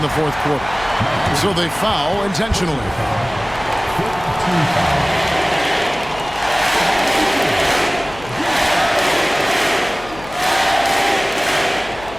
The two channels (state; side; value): noise; left; hum, 17 dB below the sound